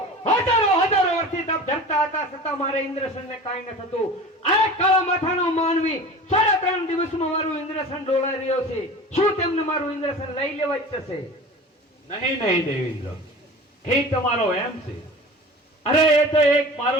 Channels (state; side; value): normal; both; correlation 0.37